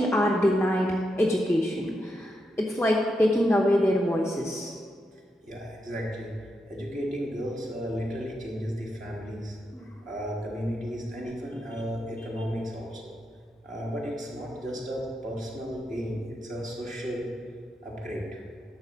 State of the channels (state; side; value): normal; both; correlation 0.84